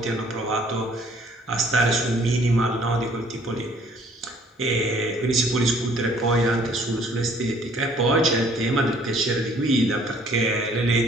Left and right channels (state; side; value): normal; both; correlation 0.59